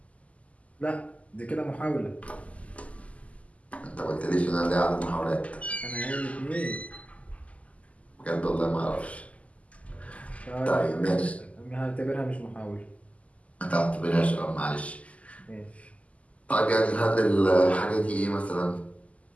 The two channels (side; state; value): right; late; 0.068 ms